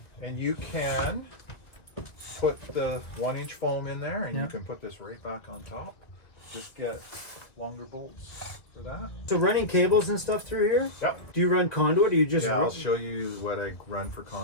and you can put the 1-inch foam in there, and you can put this right back on top. Just get longer bolts for that. So running cables and stuff through here? Yep. Do you run conduit or you just... Yeah, I'll show you what I run for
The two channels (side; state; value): right; late; 1.9 ms